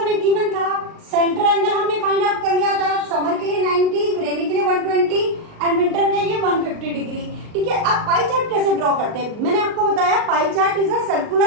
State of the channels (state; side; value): late; left; 38 ms